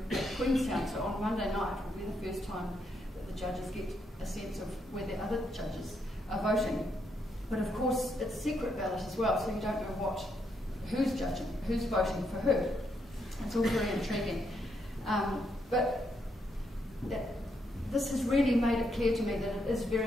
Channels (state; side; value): normal; both; correlation 0.78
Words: at Queenstown. So on Monday night will be the first time that the judges get a sense of where the other judges are voting. But of course, it's secret ballot as well, so you don't know who's judging, who's voting for who. It's all very intriguing. But this has really made it clear to me that it is